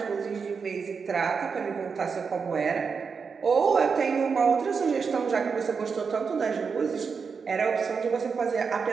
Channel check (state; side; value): quieter; left; 5.6 dB